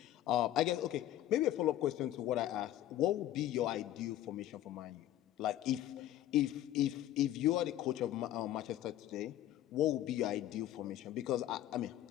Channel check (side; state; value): right; quieter; 13.0 dB